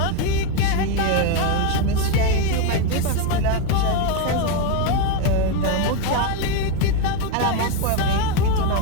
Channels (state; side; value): different; both; correlation 0.02